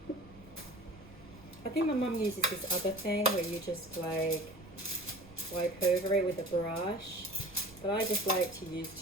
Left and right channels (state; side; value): noise; right; rumble, 23 dB below the sound